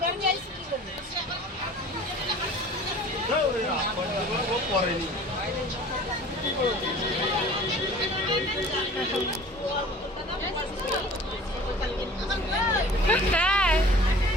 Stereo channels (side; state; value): both; normal; correlation 0.45